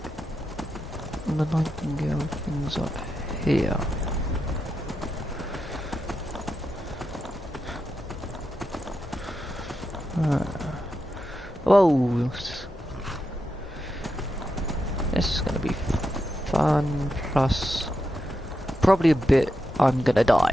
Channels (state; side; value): normal; both; correlation 0.87